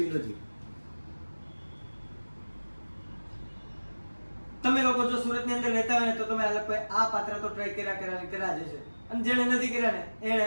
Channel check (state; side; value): inverted; both; correlation -1.00